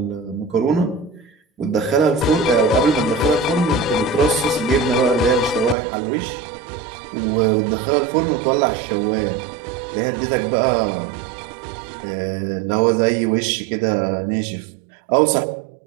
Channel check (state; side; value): drops out; left; at 5.8 s